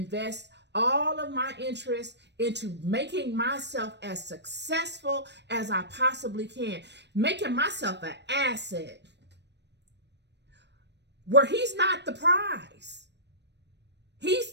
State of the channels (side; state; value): left; late; 0.50 ms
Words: all of my interest into making myself as successful as I possibly can, making myself an asset where he's not the prize.